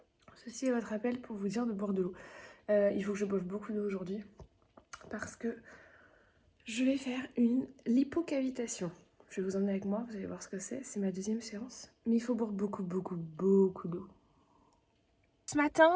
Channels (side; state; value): both; identical; correlation 1.00